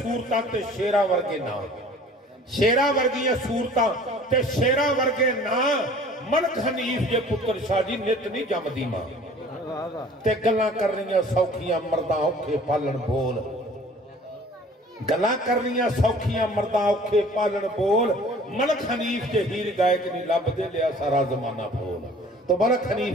ते शेरा वर्गे नाम, शेरा वर्गियां सूरतां ते शेरा वर्गे नाम। मलक हनीफ जे पुत्र शाह जी नित नहीं जमदी मां ते गल्लां करनियां सौखियां मर्दां औखे पालन बोल, गल्लां करनियां सौखियां मर्दां औखे पालन बोल। मलक हनीफ जे हीर गायक नहीं लभदे लिया सारा जमाना बोल। तो मलक हनीफ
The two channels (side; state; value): both; normal; correlation 0.49